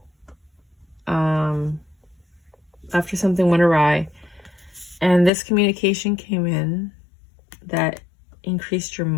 After something went awry. And this communication came in that increased your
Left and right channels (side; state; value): right; drops out; at 5.3 s